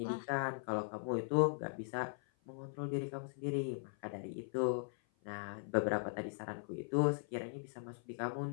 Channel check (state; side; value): silent; right; 51 dB below the other